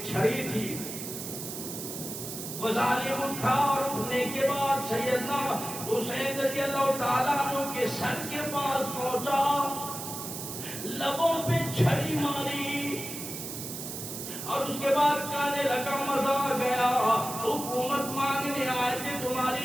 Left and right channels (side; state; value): right; noise; hiss, 8 dB below the sound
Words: چھڑی تھی، وہ ظالم اٹھا اور اٹھنے کے بعد سیدنا حسین رضی اللہ تعالیٰ عنہ کے سر کے پاس پہنچا، لبوں پہ چھڑی ماری اور اس کے بعد کہنے لگا مزہ آ گیا، حکومت مانگنے آئے تھے،